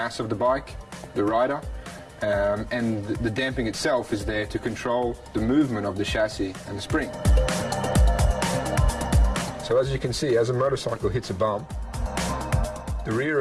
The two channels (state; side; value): identical; both; correlation 1.00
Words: of the bike, the rider, and the damping itself is there to control the movement of the chassis and the spring. So as you can see, as a motorcycle hits a bump, the rear